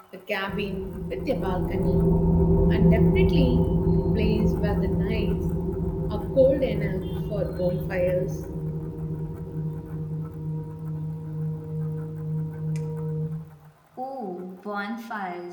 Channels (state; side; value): identical; both; correlation 1.00